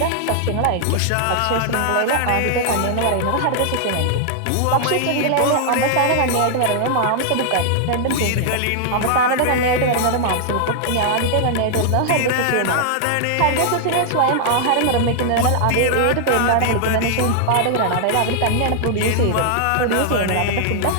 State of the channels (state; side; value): different; both; correlation -0.01